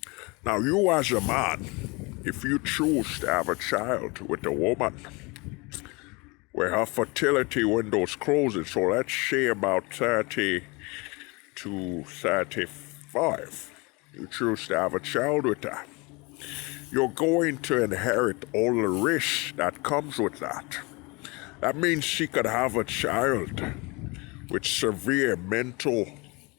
Now, you as a man, if you choose to have a child with a woman where her fertility window is closing, so let's say about 30 to 35, you choose to have a child with her, you're going to inherit all the risks that comes with that. That means she could have a child with severe mental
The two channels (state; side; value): quieter; right; 27.1 dB